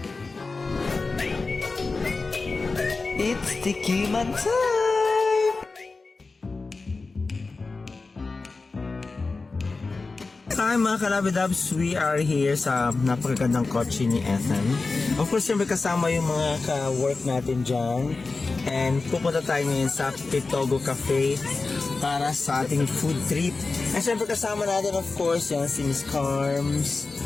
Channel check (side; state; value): right; quieter; 3.9 dB